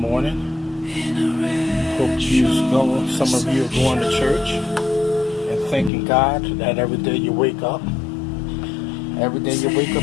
Hope some of you are going to church and thanking God that every day you wake up. Every day you wake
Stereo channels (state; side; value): drops out; right; at 5.9 s